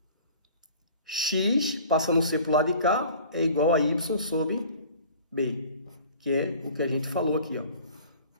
x, passando o c para o lado de cá, é igual a y sobre b, que é o que a gente falou aqui, ó.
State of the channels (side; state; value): both; inverted; correlation -0.46